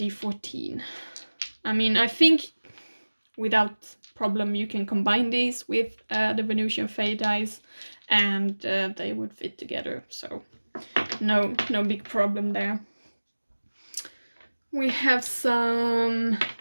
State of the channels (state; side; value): inverted; both; correlation -1.00